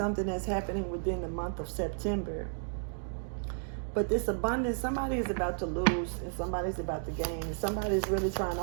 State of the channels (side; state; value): left; silent; digital silence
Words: that's happening within the month of September. But this abundance, somebody is about to lose and somebody's about to gain. And somebody's really trying